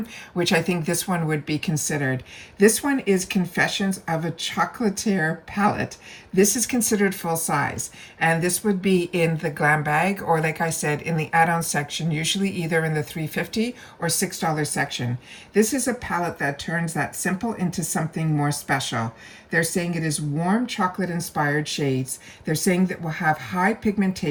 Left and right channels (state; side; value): identical; both; correlation 1.00